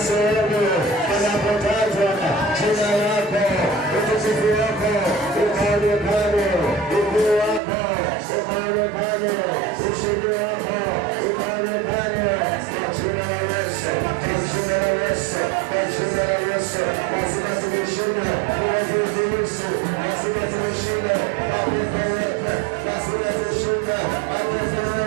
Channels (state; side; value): drops out; left; at 7.6 s